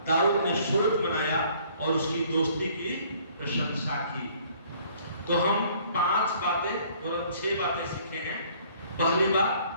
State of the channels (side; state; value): both; inverted; correlation -0.58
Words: दाऊद ने सुरत बनाया और उसकी दोस्ती की प्रशंसा की। तो हम 5 बातें और 6 बातें सीखे हैं। पहली बात,